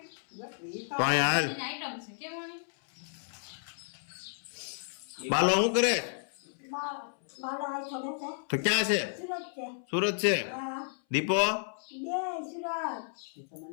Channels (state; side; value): silent; right; 56 dB below the other